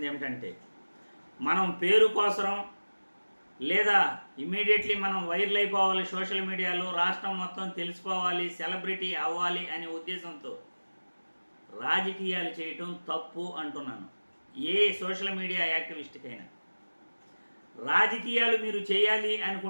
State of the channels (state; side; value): inverted; both; correlation -1.00